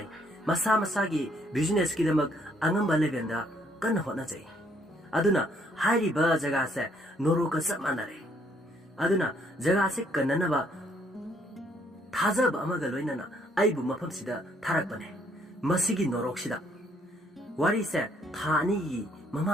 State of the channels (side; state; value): both; normal; correlation 0.67